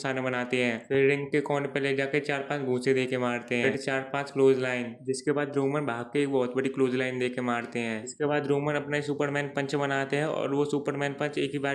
बनाते हैं। फिर रिंग के कोने पे ले जाके 4-5 घूंसे देके मारते हैं, फिर 4-5 क्लोज लाइन। जिसके बाद रोमन भाग के एक बहुत बड़ी क्लोज लाइन देके मारते हैं। इसके बाद रोमन अपना सुपरमैन पंच बनाते हैं और वो सुपरमैन पंच एक ही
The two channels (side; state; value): both; identical; correlation 1.00